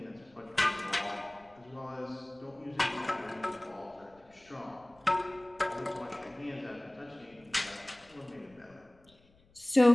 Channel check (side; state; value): left; noise; rumble, 30 dB below the sound